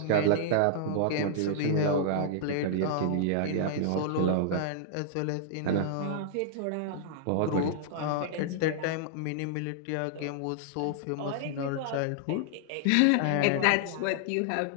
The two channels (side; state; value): both; different; correlation -0.01